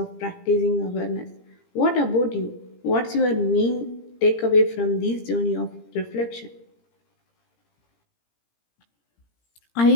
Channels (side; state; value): right; late; 17 ms